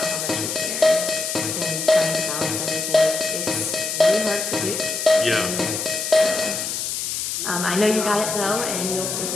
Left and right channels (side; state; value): left; noise; hiss, 3 dB below the sound